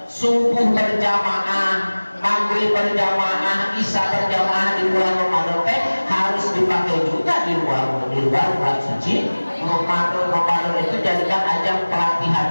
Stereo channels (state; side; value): inverted; both; correlation -1.00